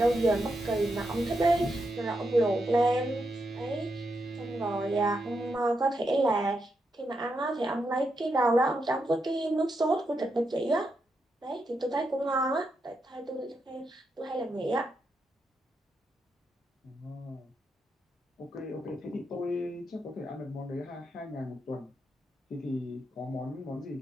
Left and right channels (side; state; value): both; normal; correlation 0.83